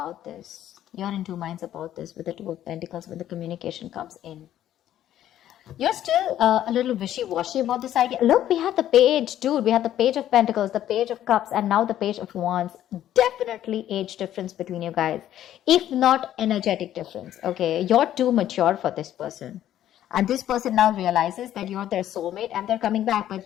this. You're in two minds about this with the Two of Pentacles when the communication comes in. You're still a little wishy-washy about this idea. Look, we have the page, dude. We have the Page of Pentacles, the Page of Cups, and now the Page of Wands. Definitely age difference between you guys. If not energetic difference, okay? You're too mature for this person. And this person now realizes that you're their soulmate and they're coming back. But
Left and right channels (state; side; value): quieter; right; 11.9 dB